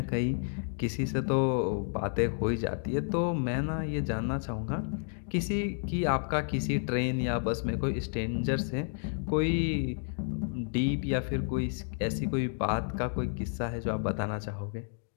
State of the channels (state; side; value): silent; right; digital silence